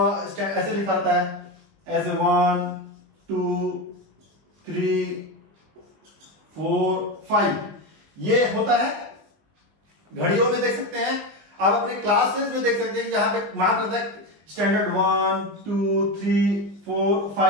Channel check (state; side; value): late; left; 20 ms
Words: लिखा होता है, ऐसे 1 2 3 4 5, ये होता है। घड़ियों में देख सकते हैं, आप अपने क्लासेस में देख सकते हैं कि जहां पे मार्क रहता है स्टैंडर्ड 1 2 3 4